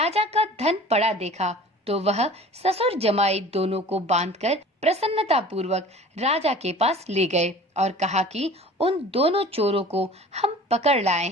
का धन पड़ा देखा तो वह ससुर जमाई दोनों को बांधकर प्रसन्नता पूर्वक राजा के पास ले गए और कहा कि उन दोनों चोरों को हम पकड़ लाए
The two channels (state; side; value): normal; both; correlation 0.43